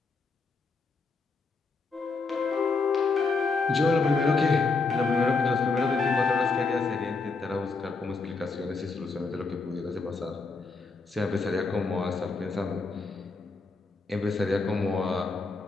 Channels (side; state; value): right; quieter; 4.2 dB